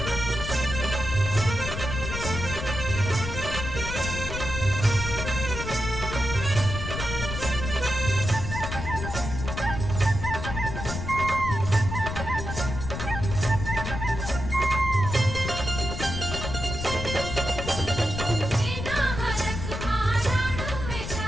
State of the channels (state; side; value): noise; left; rumble, 5 dB below the sound